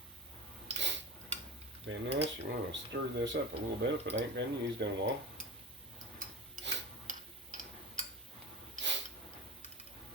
being this, you want to stir this up a little bit if it ain't been used in a while.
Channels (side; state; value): both; normal; correlation 0.27